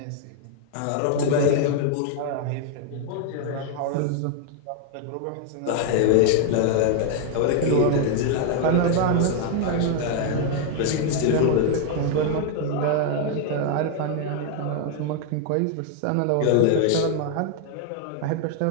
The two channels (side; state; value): both; different; correlation 0.00